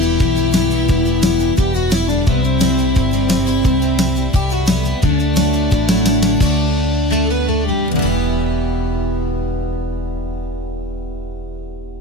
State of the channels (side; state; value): both; normal; correlation 0.39